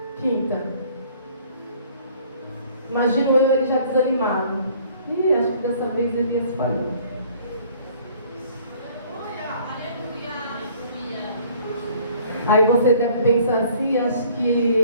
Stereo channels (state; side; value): inverted; both; correlation -0.56